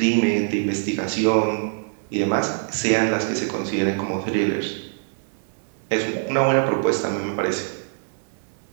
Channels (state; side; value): silent; left; 59 dB below the other